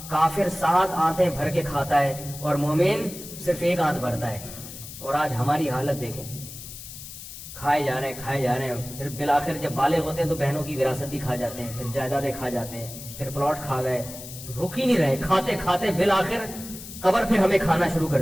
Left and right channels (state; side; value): noise; left; hiss, 13 dB below the sound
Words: کافر 7 آنتیں بھر کے کھاتا ہے اور مومن صرف 1 آنت بھرتا ہے. اور آج ہماری حالت دیکھیں, کھائے جا رہے ہیں, پھر بالآخر جب بالغ ہوتے ہیں تو بہنوں کی وراثت بھی کھا جاتے ہیں, پھر جائیدادیں کھا جاتے ہیں, پھر پلاٹ کھا گئے, رک ہی نہیں رہے, کھاتے کھاتے بالآخر قبر پھر ہمیں کھانا شروع کر